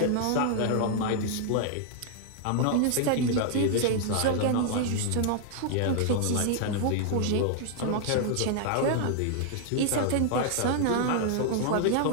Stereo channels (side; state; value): both; different; correlation 0.00